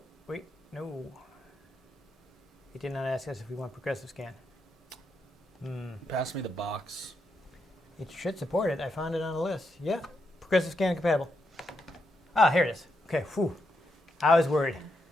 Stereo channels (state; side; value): normal; both; correlation 0.82